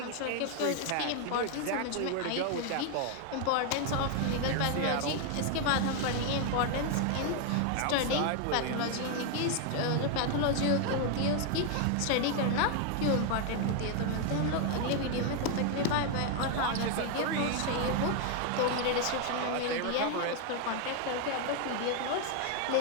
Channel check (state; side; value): different; both; correlation 0.01